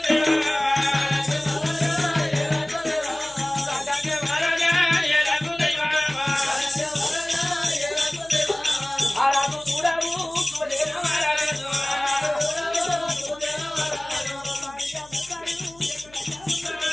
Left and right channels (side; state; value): left; noise; hum, 25 dB below the sound